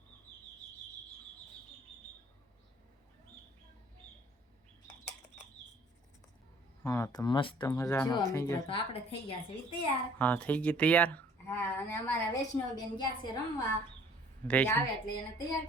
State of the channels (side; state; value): both; normal; correlation 0.55